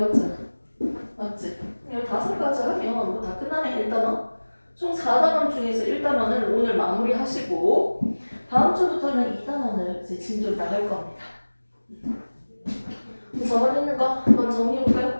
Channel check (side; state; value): both; inverted; correlation -1.00